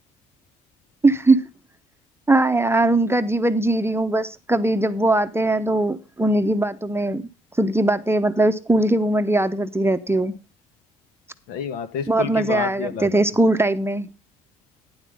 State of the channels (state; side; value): normal; both; correlation 0.77